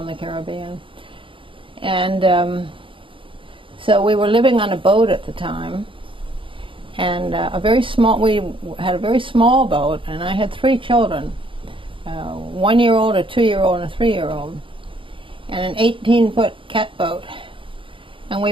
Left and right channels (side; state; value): left; late; 0.25 ms